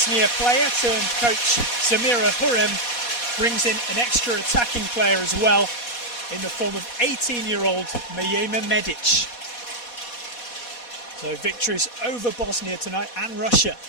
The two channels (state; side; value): late; right; 4.2 ms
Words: player turned coach Samira Hurrem brings in an extra attacking player as well, in the form of 18-year-old Mijema Medic. So victories over Bosnia tonight and Russia